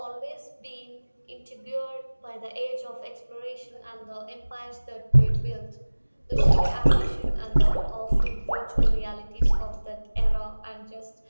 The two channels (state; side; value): inverted; both; correlation -1.00